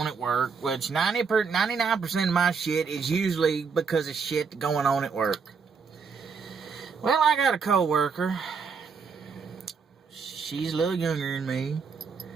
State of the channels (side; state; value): left; quieter; 5.6 dB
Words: at work, which 99% of my shit is usually because of shit going on at work. Well, I got a co-worker. She's a little younger than me.